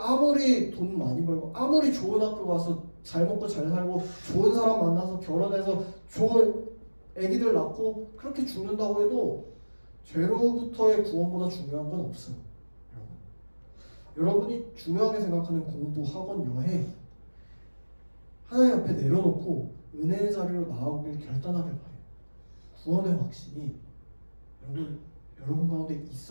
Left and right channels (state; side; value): inverted; both; correlation -1.00